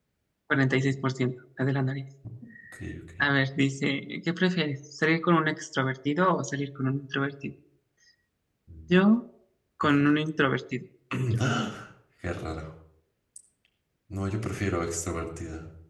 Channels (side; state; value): both; identical; correlation 1.00